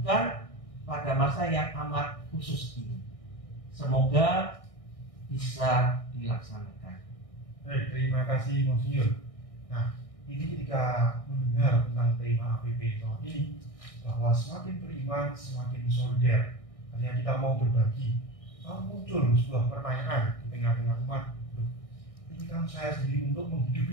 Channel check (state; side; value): late; right; 1.6 ms